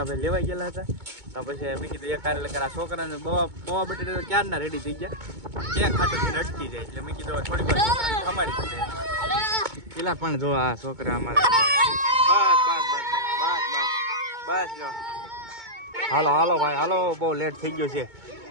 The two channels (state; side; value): late; left; 2.2 ms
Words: ભાઈ લેવાઈ ગયેલા હતા. તો પછી મેં કીધું એક કાર્ય આ છોકરાને પૌવા બટેટા તો ક્યારના રેડી થઈ ગયા, કેક ખાટું અટકી જાય. એટલે મેં કીધું થોડીક વાર છોકરાને ખમાડી દીધે. પેલા પણ જો આ છોકરા અમારા બસ જો. હાલો ભાઈ હાલો, બહુ લેટ થઈ ગયો છે.